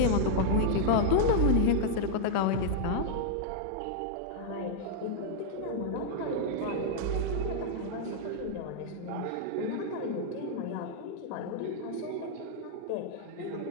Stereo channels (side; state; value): both; different; correlation -0.01